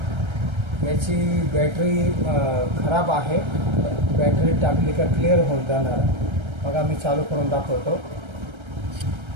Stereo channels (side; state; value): left; late; 1.3 ms